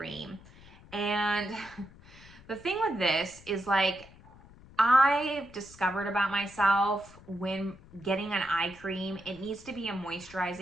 And the thing with this is like, I've discovered about myself when getting an eye cream, it needs to be a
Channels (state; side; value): noise; left; rumble, 22 dB below the sound